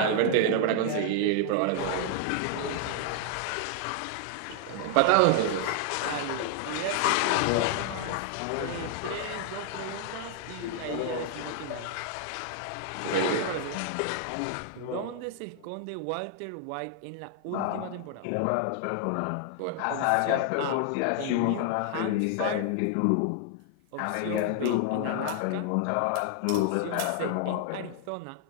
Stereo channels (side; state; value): both; different; correlation 0.00